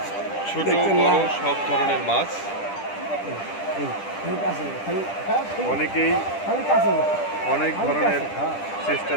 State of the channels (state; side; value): late; right; 10 ms